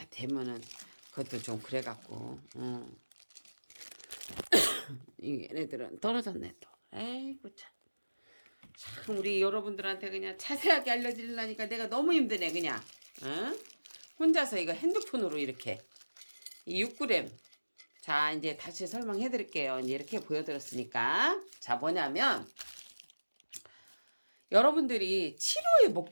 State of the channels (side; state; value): both; inverted; correlation -1.00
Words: 대면은 그것도 좀 그래갖고, 얘네들은 떨어졌네 또. 에이구 참 우리 여러분들한테 그냥 자세하게 알려드리려니까 내가 너무 힘드네 그냥. 혼자서 이거 핸드폰으로 이렇게 이 6g. 자 이제 다시 설명해 드릴게요. 이제 이렇게 보여드렸으니까. 자 뭐냐면 여러분들이 치료의